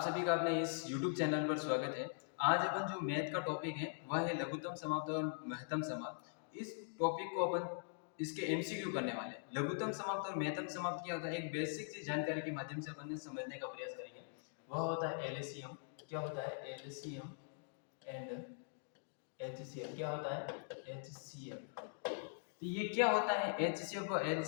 सभी का अपने इस YouTube चैनल पर स्वागत है। आज अपन जो मैथ का टॉपिक है वह है लघुत्तम समाप्त और महत्तम समाप्त। इस टॉपिक को अपन इसके एमसीक्यू करने वाले हैं। लघुत्तम समाप्त और महत्तम समाप्त क्या होता है, एक बेसिक सी जानकारी के माध्यम से अपन समझने का प्रयास करेंगे। वह होता है एलसीएम। क्या होता है एलसीएम एंड एचसीएफ? क्या होता है एचसीएफ? तो ये क्या होता है एचसीएफ और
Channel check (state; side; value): silent; right; digital silence